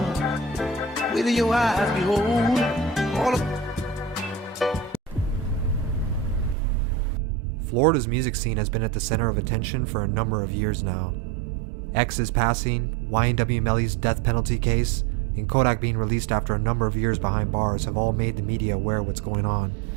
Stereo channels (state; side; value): drops out; left; at 6.6 s